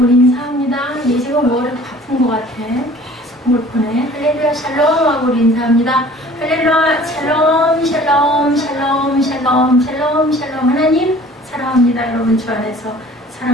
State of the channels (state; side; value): normal; both; correlation 0.49